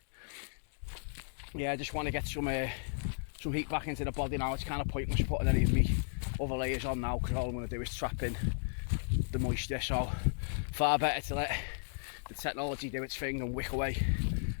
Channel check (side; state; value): right; silent; digital silence